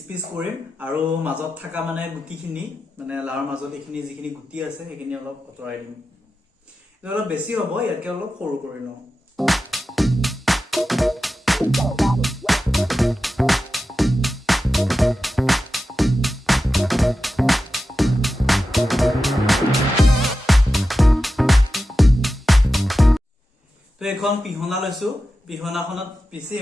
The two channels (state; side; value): normal; both; correlation 0.92